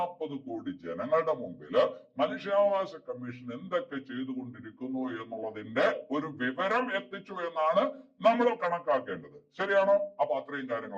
കോടി ജനങ്ങളുടെ മുമ്പില് മനുഷ്യാവകാശ കമ്മീഷൻ എന്തൊക്കെ ചെയ്തുകൊണ്ടിരിക്കുന്നു എന്നുള്ളതിന്റെ ഒരു വിവരം എത്തിച്ചു എന്നാണ് നമ്മൾ കണക്കാക്കേണ്ടത്. ശരിയാണോ? അപ്പൊ അത്രയും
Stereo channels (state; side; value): identical; both; correlation 1.00